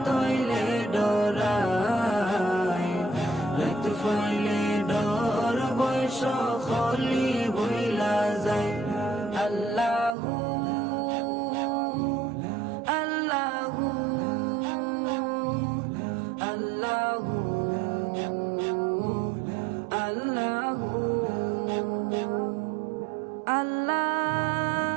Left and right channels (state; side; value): drops out; left; at 10.2 s